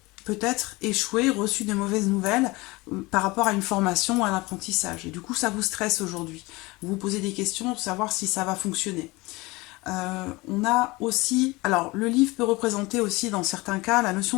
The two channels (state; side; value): quieter; right; 22.7 dB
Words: peut-être échoué, reçu de mauvaises nouvelles par rapport à une formation ou à un apprentissage. Et du coup, ça vous stresse aujourd'hui. Vous vous posez des questions pour savoir si ça va fonctionner. On a aussi... Alors, le livre peut représenter aussi, dans certains cas, la